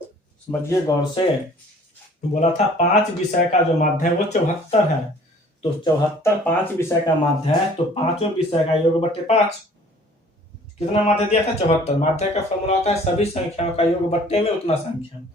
समझिए गौर से, बोला था 5 विषय का जो माध्य है वो 74 है, तो 74 5 विषय का माध्य है, तो 5 विषय का योग बट्टे 5, कितना माध्य दिया था 74। माध्य का फॉर्मूला होता है सभी संख्याओं का योग बट्टे में उतना संख्या।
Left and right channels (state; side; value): normal; both; correlation 0.52